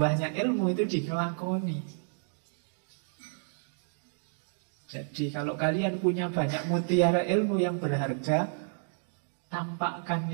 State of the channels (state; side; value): silent; left; digital silence